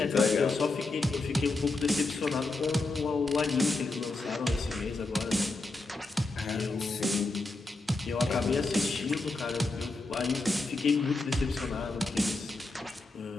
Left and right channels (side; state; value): right; quieter; 3.3 dB